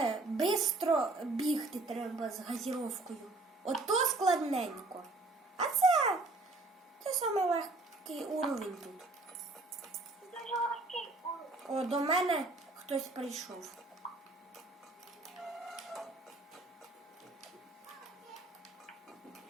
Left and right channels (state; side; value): quieter; left; 3.1 dB